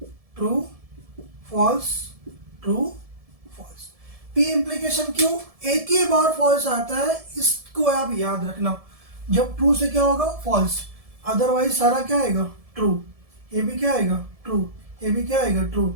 true, false, true, false. P implication Q एक ही बार फॉल्स आता है, इसको आप याद रखना। जब ट्रू से क्या होगा, फॉल्स, अदरवाइज सारा क्या आएगा, ट्रू। ये भी क्या आएगा, ट्रू, ये भी क्या आएगा,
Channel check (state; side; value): late; left; 1.7 ms